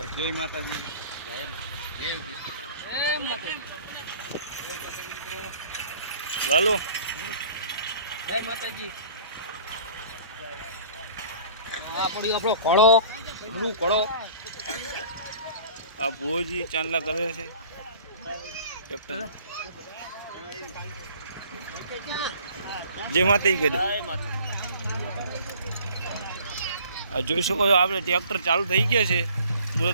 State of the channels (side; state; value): both; inverted; correlation -0.50